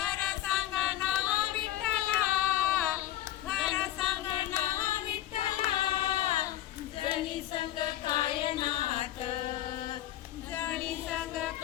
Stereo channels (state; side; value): quieter; right; 13.4 dB